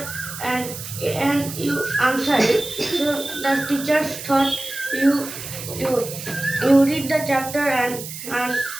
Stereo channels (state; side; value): noise; right; hiss, 10 dB below the sound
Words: and you answer it. So the teachers thought you read the chapter and